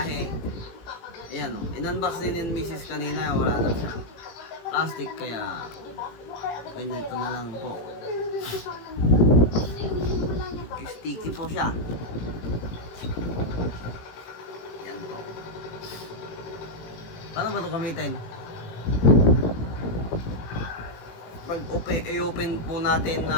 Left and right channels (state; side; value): late; right; 18 ms